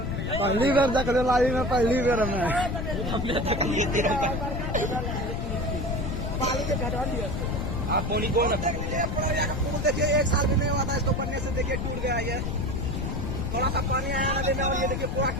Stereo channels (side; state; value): left; noise; rumble, 2 dB below the sound